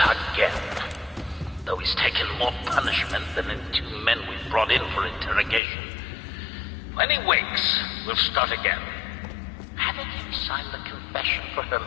again. Though he's taken more punishment than the 2 men we brought in for interrogation. When he wakes, we'll start again. Having him sign the confession for her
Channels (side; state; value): right; drops out; at 5.6 s